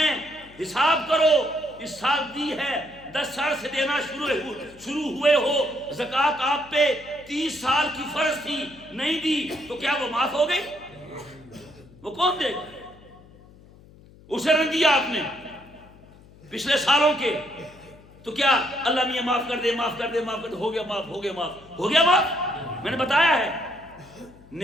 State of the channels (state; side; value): noise; left; hum, 23 dB below the sound